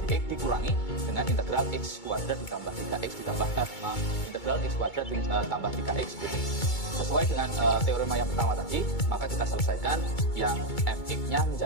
dx dikurangi dengan integral x kuadrat ditambah 3x ditambah integral x kuadrat ditambah 3x dx. Sesuai dengan teorema yang pertama tadi, maka kita selesaikan yang fx-nya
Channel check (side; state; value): right; late; 2.2 ms